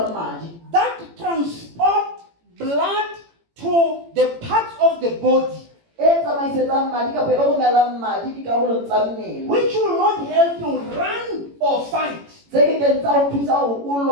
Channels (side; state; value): left; late; 18 ms